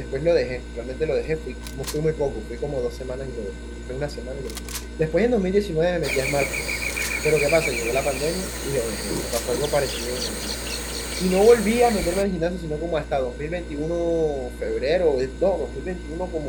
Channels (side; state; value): both; identical; correlation 1.00